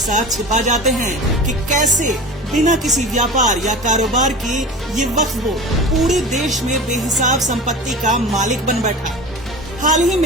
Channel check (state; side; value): normal; both; correlation 0.33